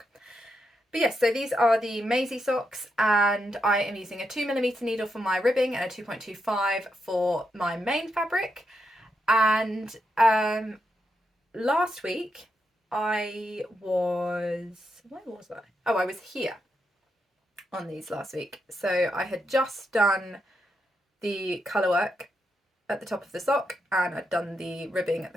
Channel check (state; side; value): normal; both; correlation 0.83